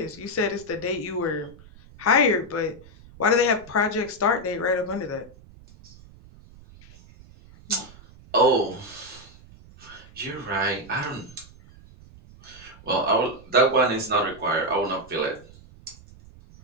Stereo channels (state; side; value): noise; right; rumble, 22 dB below the sound